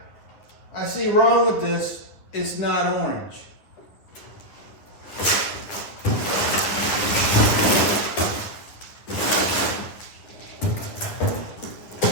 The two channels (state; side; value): late; right; 10 ms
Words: I see wrong with this, it's not orange.